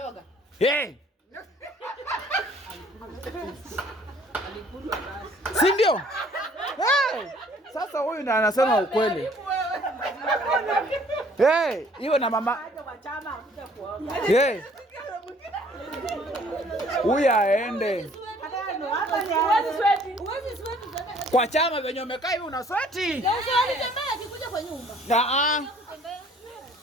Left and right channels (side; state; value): both; normal; correlation 0.58